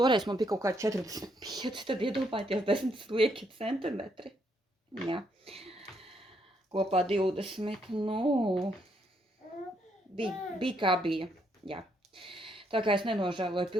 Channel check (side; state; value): both; normal; correlation 0.74